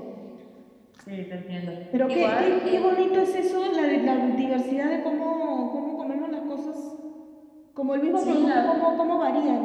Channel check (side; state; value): both; identical; correlation 1.00